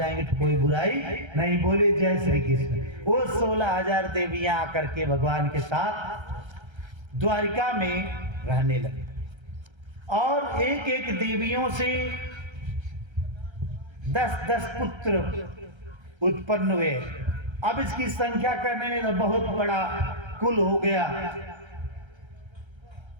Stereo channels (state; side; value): late; left; 1.3 ms